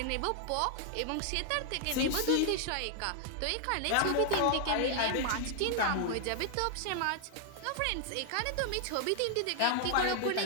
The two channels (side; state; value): both; different; correlation 0.00